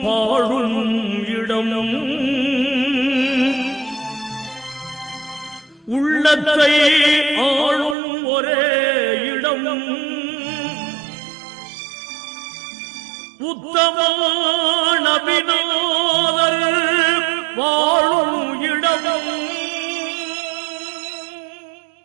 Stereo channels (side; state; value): left; drops out; at 8.0 s